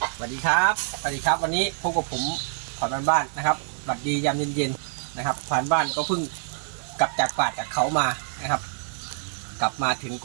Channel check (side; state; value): left; silent; 61 dB below the other